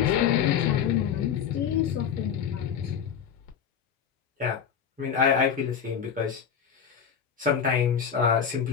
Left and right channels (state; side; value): quieter; right; 7.8 dB